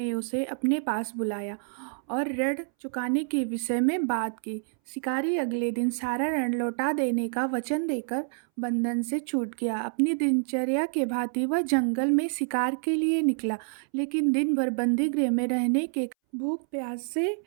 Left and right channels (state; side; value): silent; left; 60 dB below the other